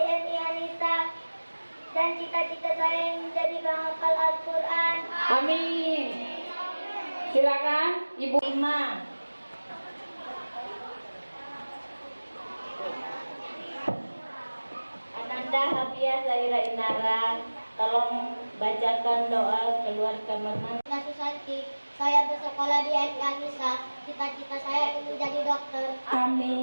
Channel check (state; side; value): inverted; both; correlation -1.00